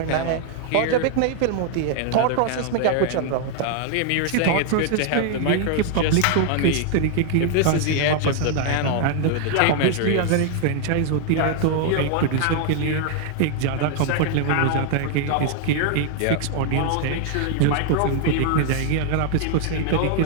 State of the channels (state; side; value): different; both; correlation 0.00